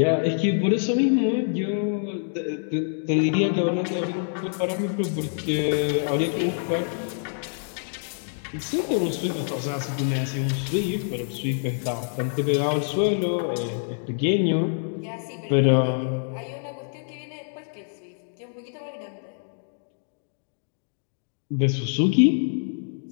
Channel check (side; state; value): right; silent; digital silence